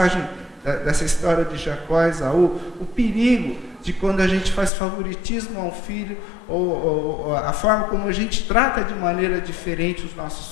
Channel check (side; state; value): right; drops out; at 4.7 s